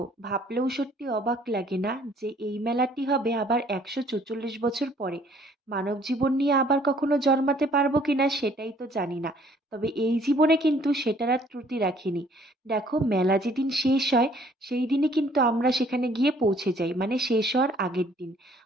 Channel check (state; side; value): normal; both; correlation 0.60